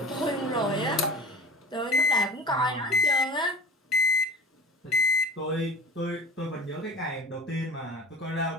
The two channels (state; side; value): normal; both; correlation 0.39